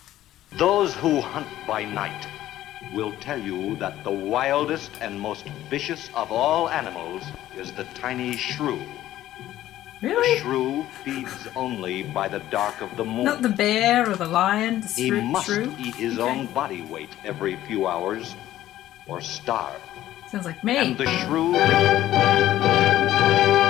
Those who hunt by night will tell you that the wildest and most vicious of all animals is the tiny shrew. Really? The shrew feeds only by the dark of the moon. Not the bear or the lion, the He must shrew? eat his own body weight every few hours or starve. Sounds like me. And the shrew...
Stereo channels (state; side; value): quieter; right; 13.7 dB